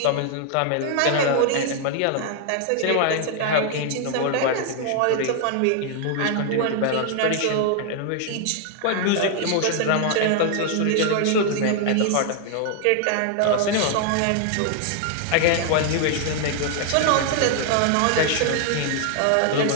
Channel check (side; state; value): both; different; correlation 0.00